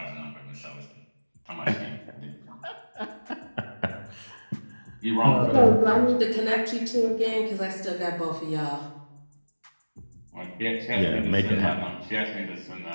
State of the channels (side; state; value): both; inverted; correlation -1.00